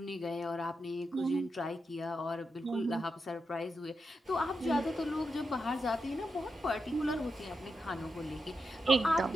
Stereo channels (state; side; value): normal; both; correlation 0.86